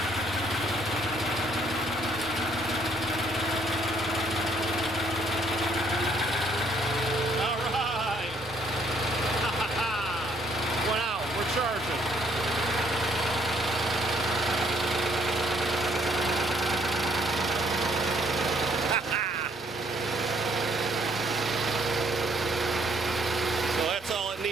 All right. Went out. We're charging. So that's all it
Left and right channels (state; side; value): normal; both; correlation 0.66